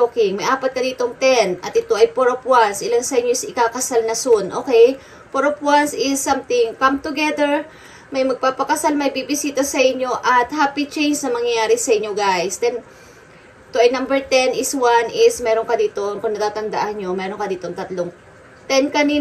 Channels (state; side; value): identical; both; correlation 1.00